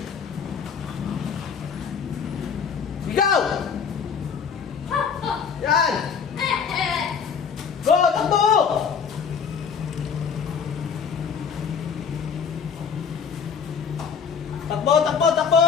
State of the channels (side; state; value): right; quieter; 6.5 dB